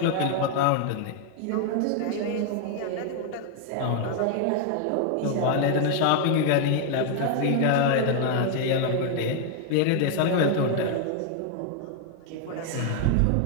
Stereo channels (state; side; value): different; both; correlation 0.00